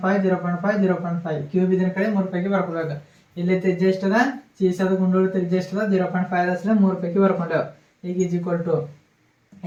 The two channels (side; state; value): both; identical; correlation 1.00